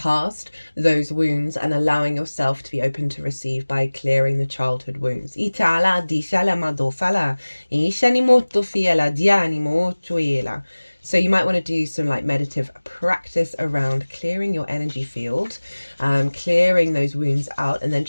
those wounds and allowing yourself to be open to receive by clearing the childhood wounds. So you might want to do some like meditative practice around clearing your energy field, clearing those wounds out, and then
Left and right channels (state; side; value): inverted; both; correlation -1.00